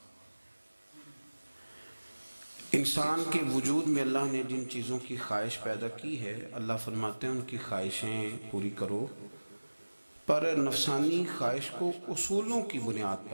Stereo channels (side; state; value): both; inverted; correlation -1.00